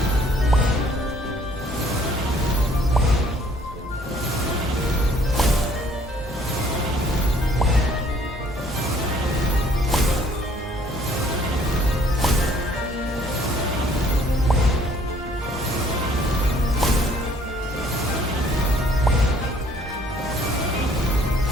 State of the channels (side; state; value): both; normal; correlation 0.60